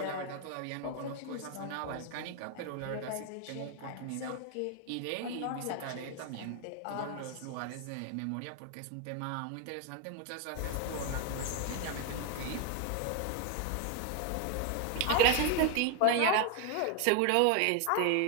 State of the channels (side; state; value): both; different; correlation 0.01